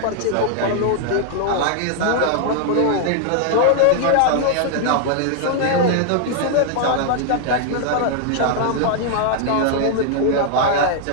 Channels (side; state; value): both; different; correlation 0.00